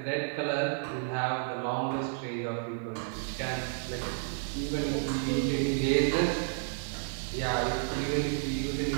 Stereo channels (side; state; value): left; silent; digital silence